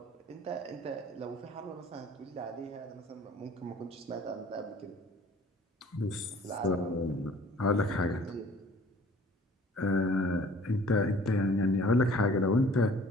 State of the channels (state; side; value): normal; both; correlation 0.51